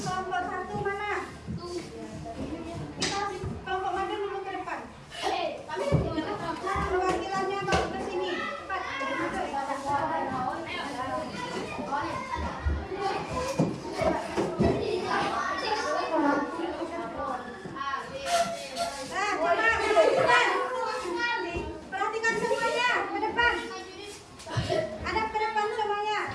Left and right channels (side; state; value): both; identical; correlation 1.00